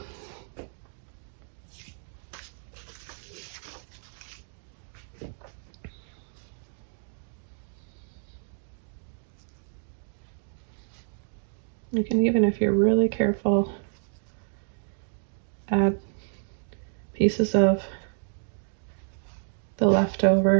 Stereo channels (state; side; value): silent; left; digital silence